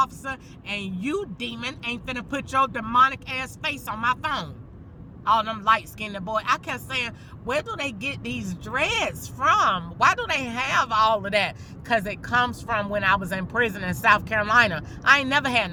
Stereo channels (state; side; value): identical; both; correlation 1.00